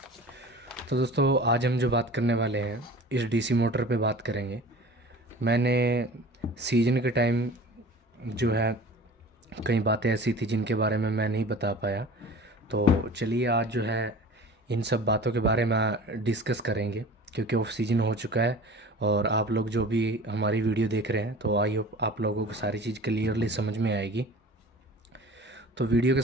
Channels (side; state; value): both; normal; correlation 0.41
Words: तो दोस्तों, आज हम जो बात करने वाले हैं इस डीसी मोटर पे बात करेंगे। मैंने सीजन के टाइम जो है कई बातें ऐसी थी जिनके बारे में मैं नहीं बता पाया। तो चलिए आज जो है इन सब बातों के बारे में डिस्कस करेंगे, क्योंकि ऑफ सीजन हो चुका है और आप लोग जो भी हमारी वीडियो देख रहे हैं, तो आई होप आप लोगों को सारी चीज़ क्लियरली समझ में आएगी। तो वीडियो के